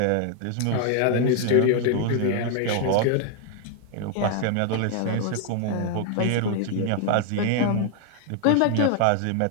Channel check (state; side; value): different; both; correlation 0.00